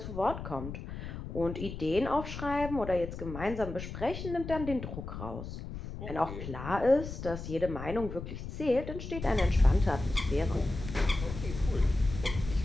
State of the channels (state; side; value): noise; left; rumble, 8 dB below the sound